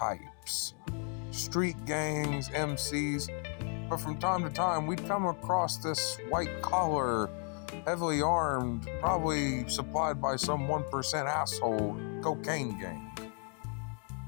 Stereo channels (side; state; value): right; quieter; 39.3 dB